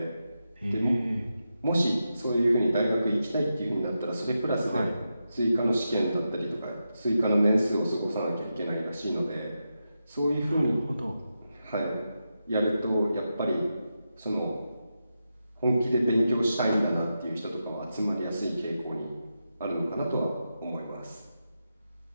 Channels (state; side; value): inverted; both; correlation -0.88